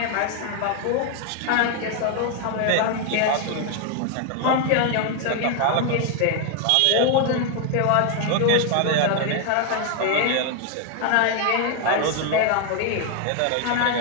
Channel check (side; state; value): both; different; correlation 0.01